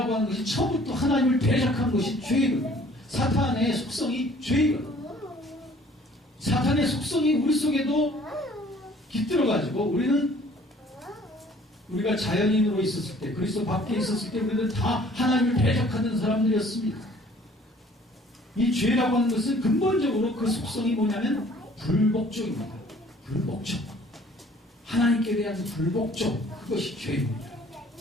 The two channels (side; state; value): both; normal; correlation 0.55